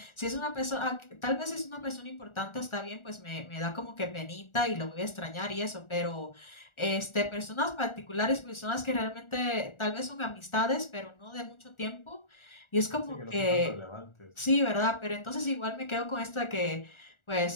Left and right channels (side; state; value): right; late; 1.4 ms